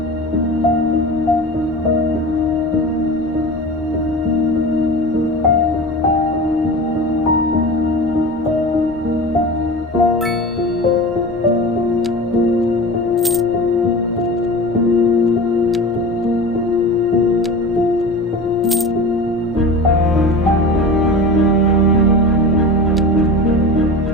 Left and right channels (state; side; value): normal; both; correlation 0.32